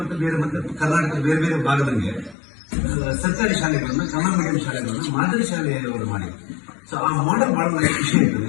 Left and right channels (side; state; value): right; drops out; at 2.4 s